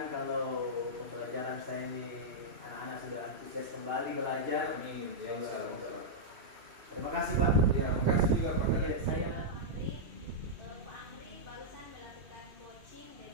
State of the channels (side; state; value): left; late; 2.7 ms